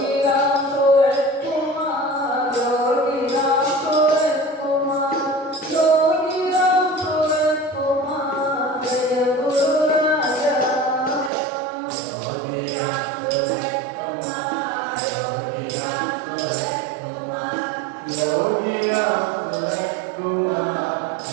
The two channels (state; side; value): drops out; left; at 11.3 s